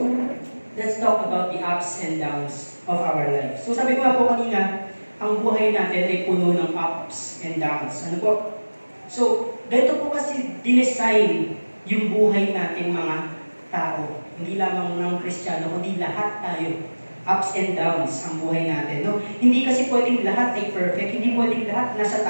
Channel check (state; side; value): inverted; both; correlation -1.00